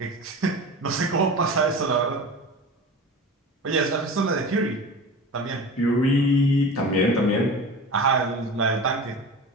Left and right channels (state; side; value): normal; both; correlation 0.33